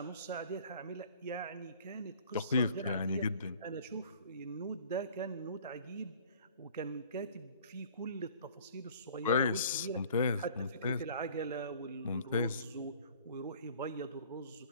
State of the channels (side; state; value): both; inverted; correlation -0.51